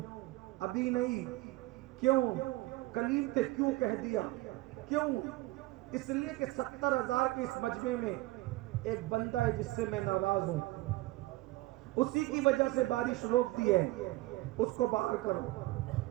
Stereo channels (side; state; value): left; quieter; 19.1 dB